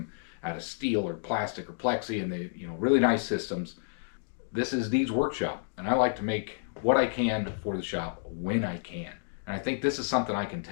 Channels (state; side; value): silent; right; digital silence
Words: out of steel or plastic or plexi, and they, really nice systems. This is Dee's workshop, and I like to make what I can for the shop when I can. And I think this is something I can